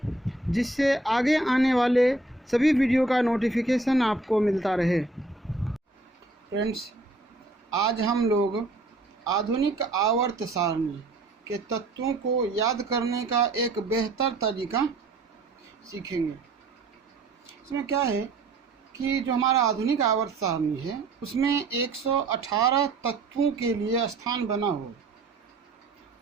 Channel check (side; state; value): left; quieter; 3.1 dB